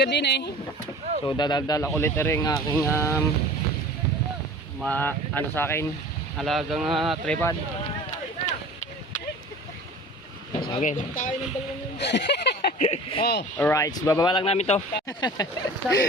din eh. So dadal ulit rin aking ano sa akin, alagang tripod. Okay. Alright, so bababa lang namin to.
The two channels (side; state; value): both; normal; correlation 0.42